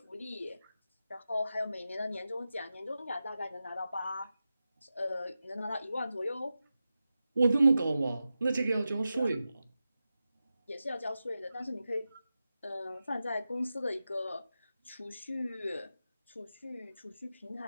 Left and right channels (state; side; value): inverted; both; correlation -0.92